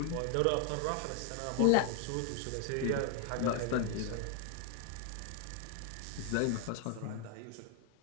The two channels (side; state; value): both; different; correlation 0.00